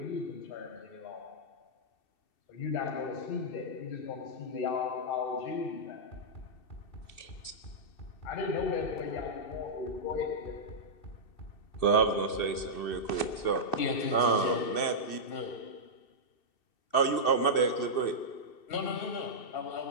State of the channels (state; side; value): late; right; 2.7 ms